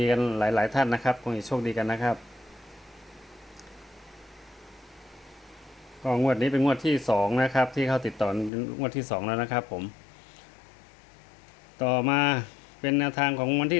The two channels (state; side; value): drops out; right; at 8.5 s